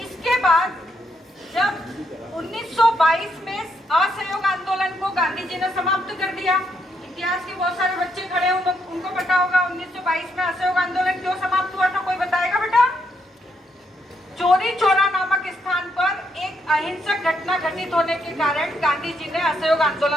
इसके बाद जब 1922 में असहयोग आंदोलन को गांधी जी ने समाप्त कर दिया, इतिहास के बहुत सारे बच्चे खड़े हैं, उनको पता होगा 1922 में असहयोग आंदोलन क्यों समाप्त हुआ था, कोई बताएगा बेटा? चोरी चौरा नामक स्थान पर एक अहिंसक घटना घटित होने के कारण गांधी जी ने असहयोग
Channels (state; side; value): normal; both; correlation 0.77